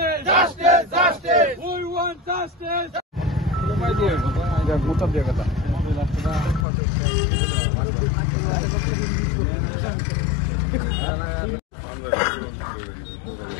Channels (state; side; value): drops out; right; at 6.7 s